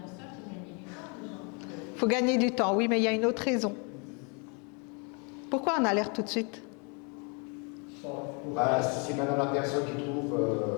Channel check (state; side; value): quieter; right; 34.7 dB